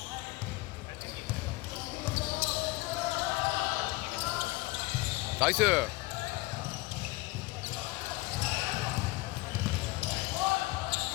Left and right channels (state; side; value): quieter; right; 21.5 dB